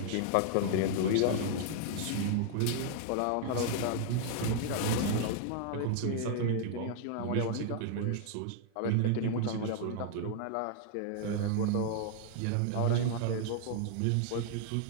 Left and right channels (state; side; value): different; both; correlation 0.00